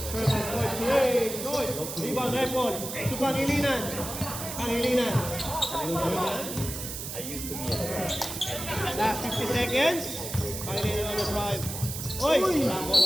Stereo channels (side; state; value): right; noise; hiss, 7 dB below the sound